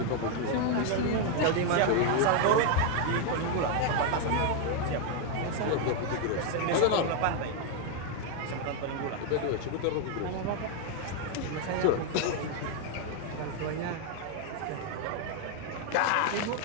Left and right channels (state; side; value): different; both; correlation 0.01